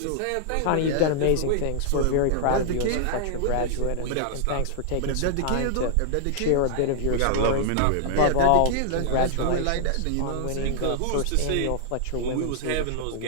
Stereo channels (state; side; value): different; both; correlation -0.01